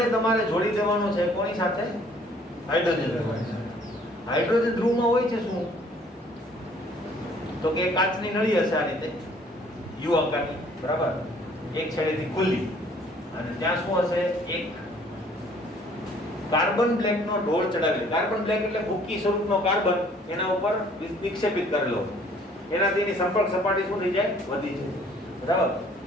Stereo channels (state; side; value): normal; both; correlation 0.58